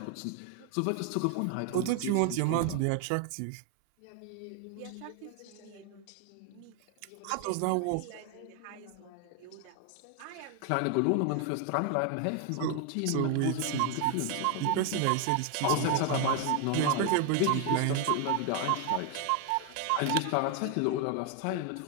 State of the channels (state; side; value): different; both; correlation 0.01